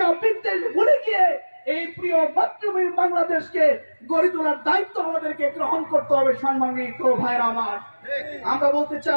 বিদ্বেষ ভুলে গিয়ে এই প্রিয় মাতৃভূমি বাংলাদেশকে গড়ে তোলার দায়িত্ব আমাদেরকে গ্রহণ করতে হবে। সম্মানিত ভাইরা আমার, আমরা বলতে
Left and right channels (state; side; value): inverted; both; correlation -1.00